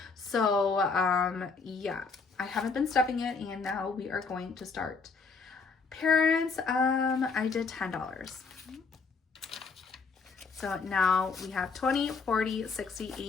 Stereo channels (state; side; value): quieter; right; 4.7 dB